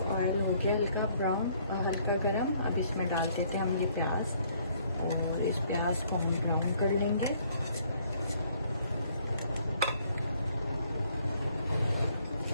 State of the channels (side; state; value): both; inverted; correlation -0.64